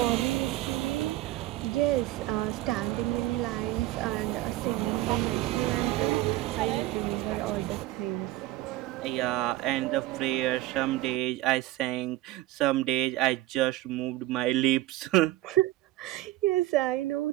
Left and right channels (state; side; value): quieter; left; 16.3 dB